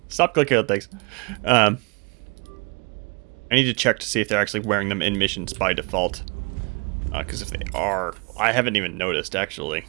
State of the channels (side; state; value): left; quieter; 32.6 dB